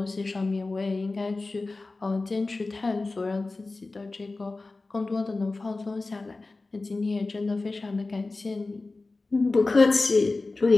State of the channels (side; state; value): right; quieter; 3.4 dB